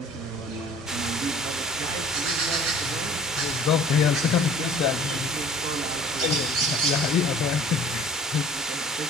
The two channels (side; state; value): both; normal; correlation 0.48